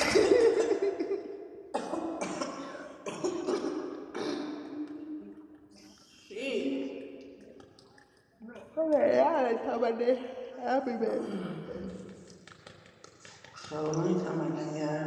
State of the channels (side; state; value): both; identical; correlation 1.00